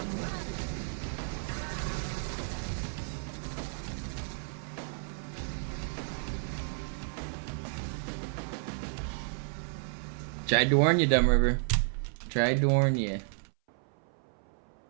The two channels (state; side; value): silent; left; 56 dB below the other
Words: Tried to warn you, Dumb River. Tried to warn you.